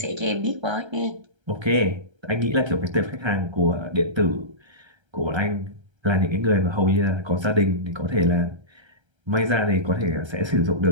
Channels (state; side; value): late; left; 1.3 ms